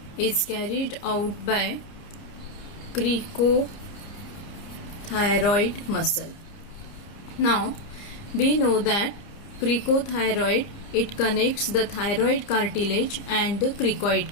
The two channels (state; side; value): late; right; 30 ms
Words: is carried out by cricothyroid muscle. Now we know that cricothyroid, it connects the thyroid cartilage and the